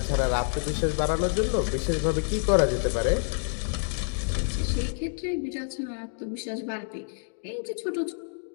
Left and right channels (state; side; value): silent; right; digital silence